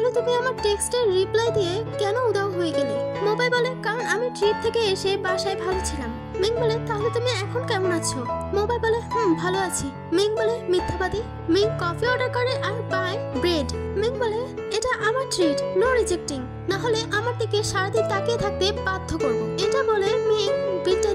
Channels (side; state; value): both; identical; correlation 1.00